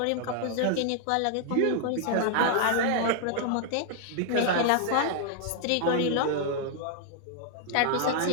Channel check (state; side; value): different; both; correlation 0.00